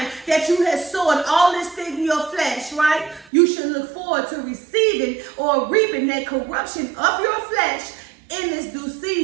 that you had sown all this thing in your flesh, right? You should look forward to receiving or reaping that corruption of your flesh in this due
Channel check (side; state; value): left; drops out; at 3.3 s